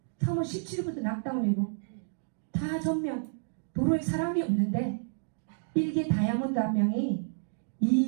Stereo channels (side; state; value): left; silent; digital silence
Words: 3월 17일부터 낙다운이고 다 전면 도로에 사람이 없는데 일개 다이아몬드 한 명이